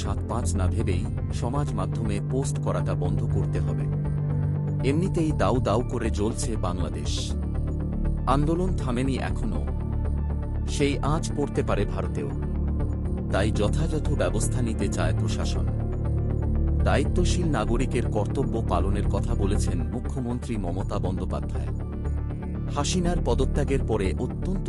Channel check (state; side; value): identical; both; correlation 1.00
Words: ৭-৫ না ভেবেই সমাজ মাধ্যমে পোস্ট করাটা বন্ধ করতে হবে। এমনিতেই দাউ দাউ করে জ্বলছে বাংলাদেশ, আন্দোলন থামেনি এখনো, সেই আঁচ পড়তে পারে ভারতেও। তাই যথাযথ ব্যবস্থা নিতে চায় প্রশাসন। দায়িত্বশীল নাগরিকের কর্তব্য পালনের কথা বলেছেন মুখ্যমন্ত্রী মমতা বন্দ্যোপাধ্যায়। হাসিনার পদত্যাগের পরে অত্যন্ত